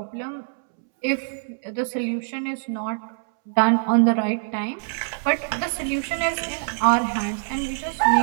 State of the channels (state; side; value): silent; left; 63 dB below the other